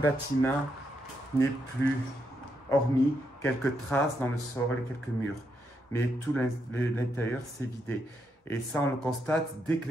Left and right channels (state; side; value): normal; both; correlation 0.80